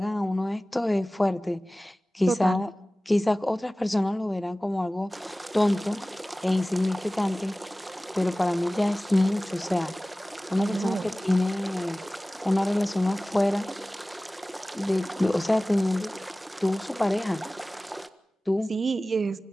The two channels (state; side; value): normal; both; correlation 0.98